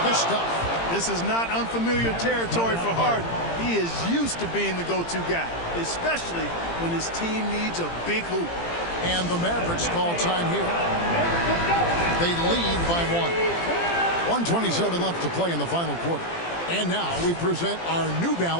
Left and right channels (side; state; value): right; late; 18 ms